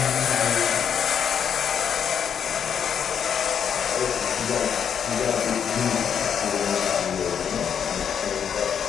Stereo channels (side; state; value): right; quieter; 7.9 dB